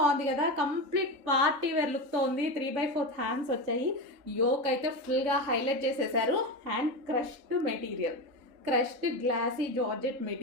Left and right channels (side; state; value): left; late; 3.8 ms